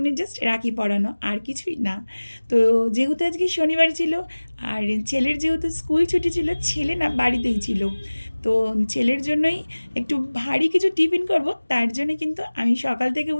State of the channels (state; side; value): inverted; both; correlation -1.00